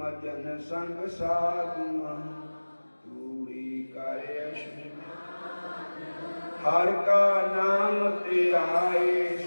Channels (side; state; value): both; inverted; correlation -1.00